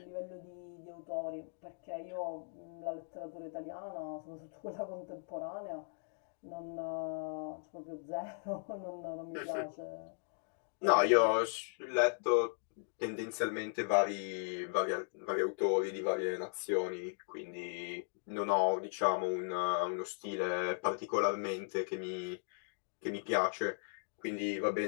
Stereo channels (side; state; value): right; silent; digital silence